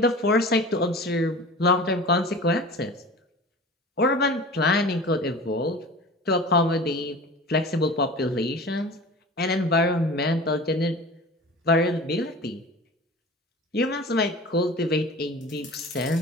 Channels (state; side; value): normal; both; correlation 0.38